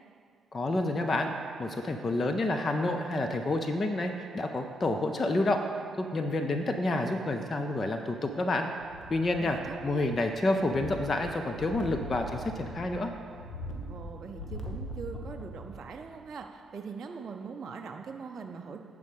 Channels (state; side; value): normal; both; correlation 0.81